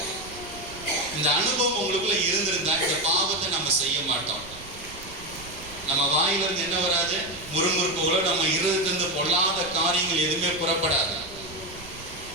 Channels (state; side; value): noise; right; rumble, 17 dB below the sound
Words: இந்த அனுபவம் உங்களுக்குள்ள இருந்திருந்தா இந்த பாவத்தை நம்ம செய்ய மாட்டோம். நம்ம வாயிலிருந்து என்ன வராது? முறுமுறுப்புகளோ நம்ம இருதயத்திலிருந்து பொல்லாத காரியங்கள் எதுவுமே புறப்படாது.